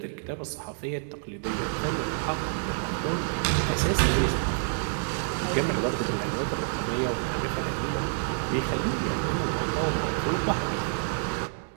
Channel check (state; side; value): silent; left; digital silence